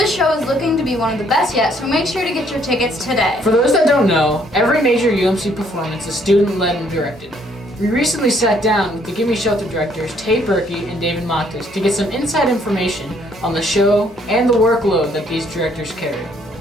show is looking to be one of the best yet, so make sure to get your tickets today. For those that don't know, every major UMC performance is student-led and directed. We recently sat down with the Gimme Shelter directors Tate Berkey and David Montes to get some inside information on the show and the workload that these directors carry.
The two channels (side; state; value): both; normal; correlation 0.66